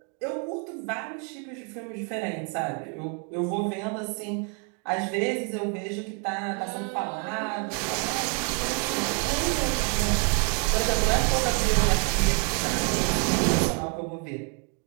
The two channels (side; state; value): left; quieter; 34.5 dB